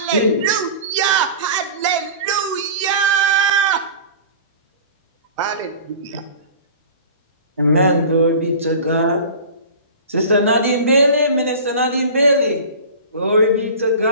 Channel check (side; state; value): both; inverted; correlation -0.37